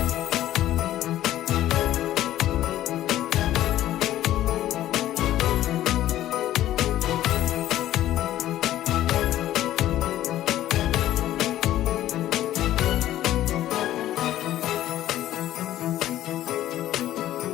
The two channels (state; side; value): quieter; right; 13.4 dB